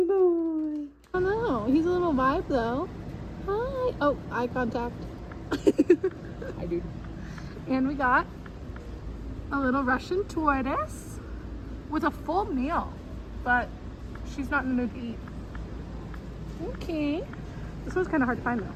boy. Oh no, he's a little vibe though. Hi. Oh, eye contact. Hi, dude. And we got a little Russian tortoise with a full meal, but she's not in the mood to eat. Okay. This one's kind of hard to find though.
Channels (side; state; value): both; identical; correlation 1.00